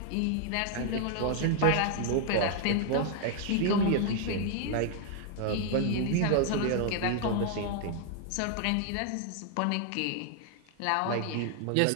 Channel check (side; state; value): both; different; correlation 0.00